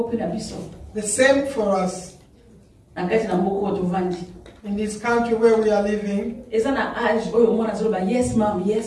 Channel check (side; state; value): both; identical; correlation 1.00